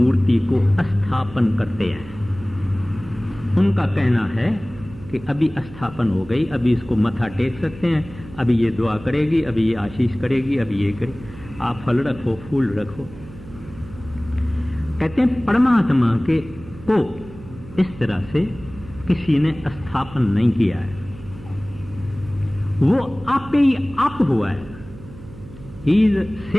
को स्थापन करते हैं। उनका कहना है कि अभी स्थापन हो गई, अभी इसको मथा टेक सकते हैं, अभी ये दुआ करेगी, अभी ये आशीष करेगी, अभी ये करे, आप फल रखो, फूल रखो। कहते हैं परमात्मा के को इस तरह से किसी ने स्थापन नहीं किया है, वो आप पे ही आप हुआ है। He is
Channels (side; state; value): right; noise; hum, 17 dB below the sound